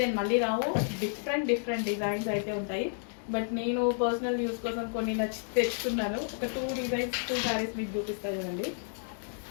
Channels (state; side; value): silent; right; digital silence